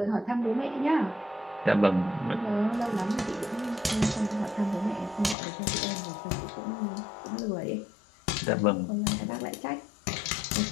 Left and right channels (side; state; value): right; drops out; at 5.4 s